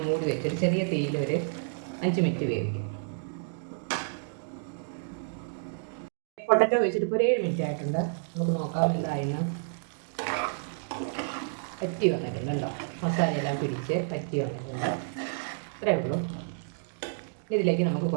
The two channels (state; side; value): silent; left; digital silence